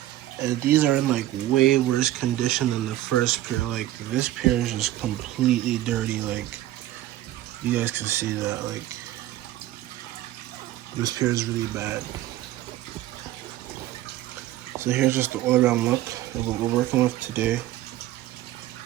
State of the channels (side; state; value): left; quieter; 14.6 dB